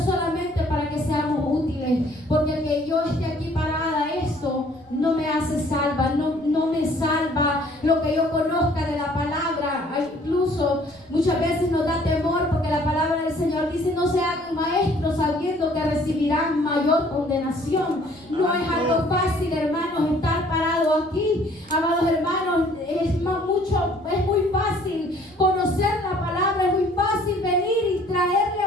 para que seamos útiles, porque el que yo esté aquí parada, esto no me hace salva, no me salva lo que yo conozca de la palabra. Incluso muchas veces nos da temor porque la palabra del Señor dice: no se hagan maestros sabiendo que recibirán mayor condenación. No es algo fácil, hermanos, estar parado aquí, amados hermanos. Es muy fácil conocer la palabra, es muy fácil venir y traerle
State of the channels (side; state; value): right; noise; rumble, 28 dB below the sound